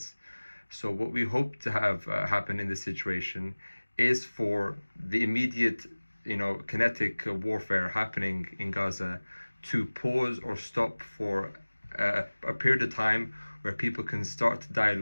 So what we hope to have happen in this situation is for the immediate, kinetic warfare happening in Gaza to pause or stop for a period of time where people can start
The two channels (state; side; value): inverted; both; correlation -1.00